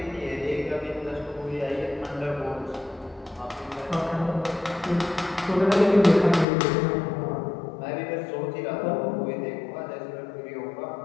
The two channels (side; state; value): right; drops out; at 6.5 s